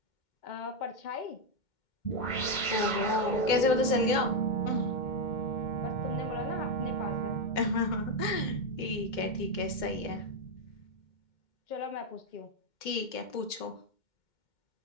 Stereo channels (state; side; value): late; right; 2.1 ms